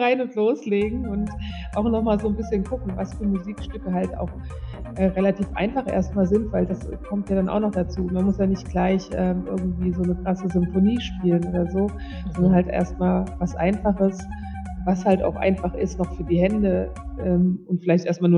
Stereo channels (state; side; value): identical; both; correlation 1.00